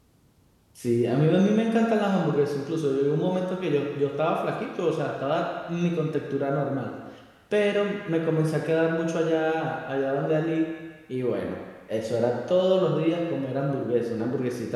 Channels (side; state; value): both; identical; correlation 1.00